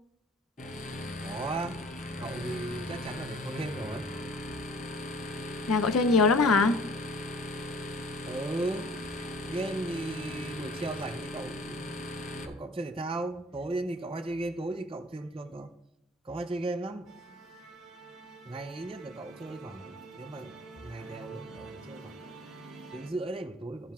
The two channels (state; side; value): normal; both; correlation 0.51